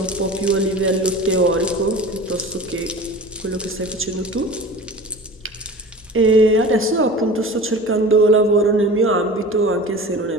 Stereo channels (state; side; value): normal; both; correlation 0.37